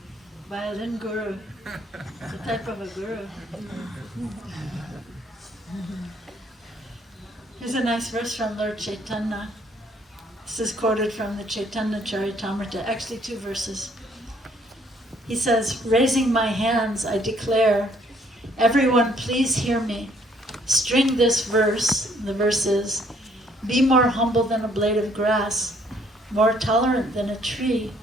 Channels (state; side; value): normal; both; correlation 0.64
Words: Violin guru. It's a type of a guru. Here's a nice verse from Lord Chaitanya. This is quoted from the Chaitanya Charitamrita, actually 2 verses. He says, raising my hands, I declare, everyone please hear me. String this verse, the verse is, be more humble than a blade of grass, more tolerant than a tree,